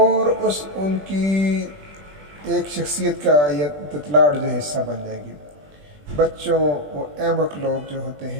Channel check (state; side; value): late; left; 20 ms